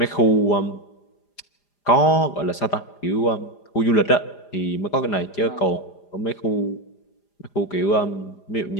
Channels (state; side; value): late; right; 5.0 ms